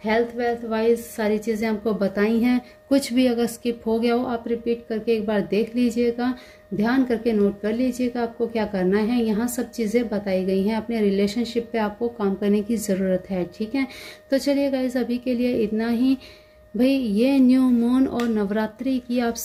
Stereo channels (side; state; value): both; identical; correlation 1.00